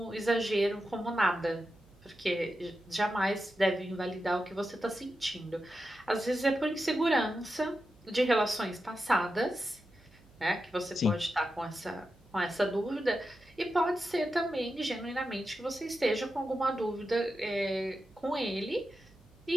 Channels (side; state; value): right; noise; hum, 27 dB below the sound